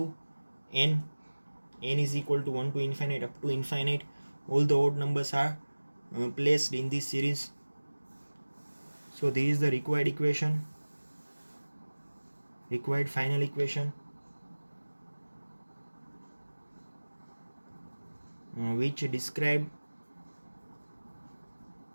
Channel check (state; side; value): inverted; both; correlation -1.00